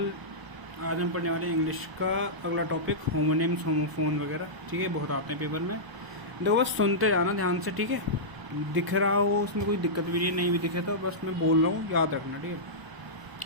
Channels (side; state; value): left; late; 1.0 ms